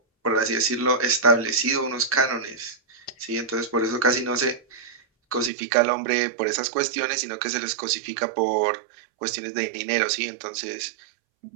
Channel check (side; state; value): left; drops out; at 5.5 s